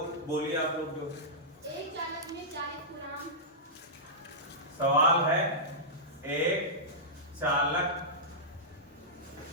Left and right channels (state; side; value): normal; both; correlation -0.15